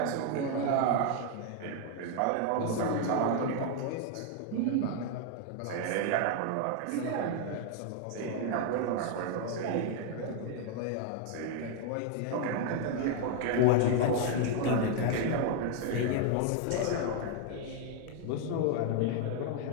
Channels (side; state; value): both; different; correlation 0.00